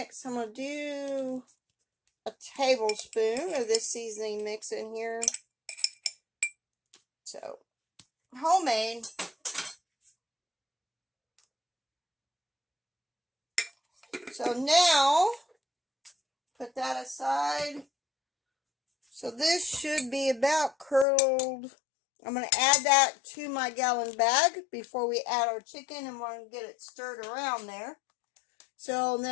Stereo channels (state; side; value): drops out; right; at 21.1 s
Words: I'm going to do a tablespoon of this seasoning mix in here. So, homemade. So now, put that aside. So this should be about curdled. I'm going to add that to my gallon bag before we add our chicken, and we're going to get it stirred around there. So